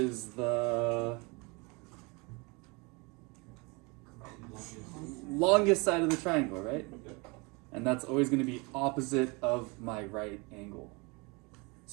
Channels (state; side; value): quieter; left; 28.4 dB